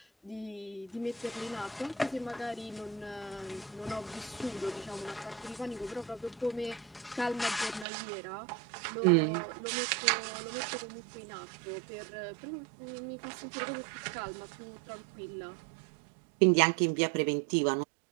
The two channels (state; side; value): drops out; left; at 7.9 s